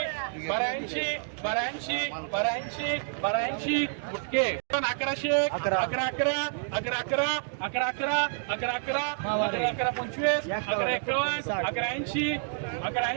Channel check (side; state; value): left; silent; digital silence